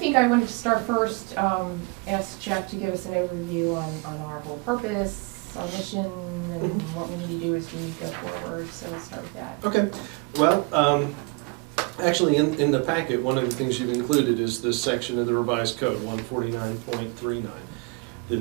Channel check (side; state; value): left; quieter; 29.0 dB